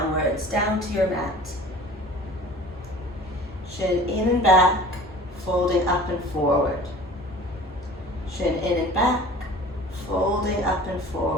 down to your mat. Shin in and back, folding up and forward. Shin in and back, folding up and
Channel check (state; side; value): normal; both; correlation 0.43